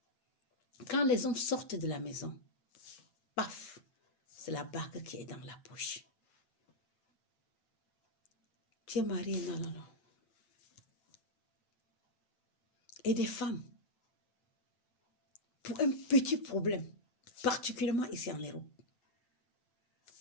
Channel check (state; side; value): late; right; 9.0 ms